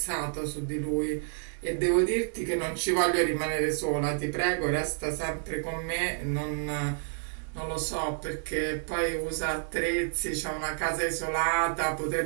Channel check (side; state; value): left; silent; digital silence